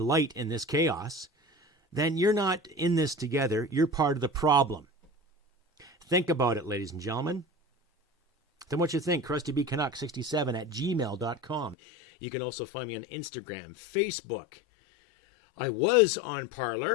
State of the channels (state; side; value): drops out; right; at 11.8 s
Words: light in this chaos, then you're not in this together. You're part of the problem. Think about it, ladies and gentlemen. Then what you think? CrustyBCanuck67@gmail.com. You can also find me on Instagram, Facebook. I was on